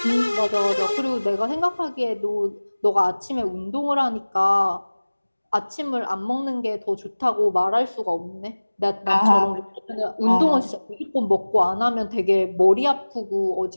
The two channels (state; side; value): inverted; both; correlation -1.00